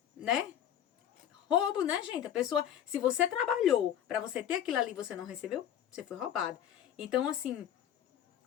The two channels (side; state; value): right; quieter; 10.2 dB